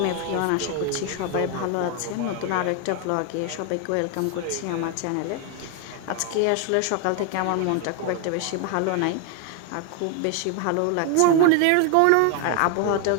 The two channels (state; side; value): different; both; correlation 0.01